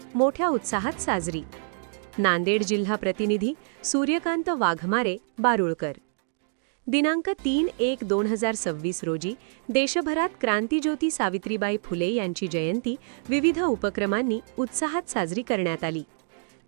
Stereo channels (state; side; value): silent; left; digital silence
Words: मोठ्या उत्साहात साजरी। नांदेड जिल्हा प्रतिनिधी सूर्यकांत वाघमारे बारूळकर। दिनांक 3/1/2026 रोजी देशभरात क्रांतिज्योती सावित्रीबाई फुले यांची जयंती विविध उपक्रमांनी उत्साहात साजरी करण्यात आली।